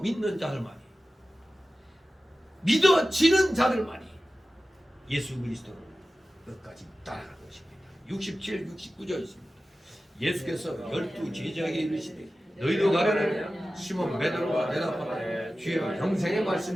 자들만이 믿어지는 자들만이 예수 그리스도를 끝까지 따라갈 것입니다. 67, 69절 있습니다. 예수께서 12 제자에게 이르시되 너희도 가려면 시몬 베드로가 대답하되 주여 영생의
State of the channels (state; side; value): normal; both; correlation 0.95